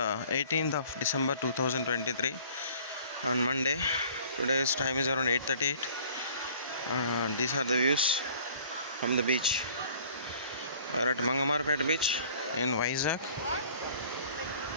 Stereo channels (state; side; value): inverted; both; correlation -0.52